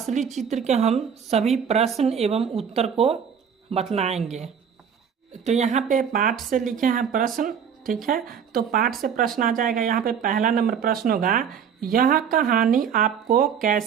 चित्र के हम सभी प्रश्न एवं उत्तर को बतलाएंगे। तो यहाँ पे पाठ से लिखे हैं प्रश्न। ठीक है, तो पाठ से प्रश्न आ जाएगा। यहाँ पे पहला नंबर प्रश्न होगा, यह कहानी आपको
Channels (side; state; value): left; quieter; 7.5 dB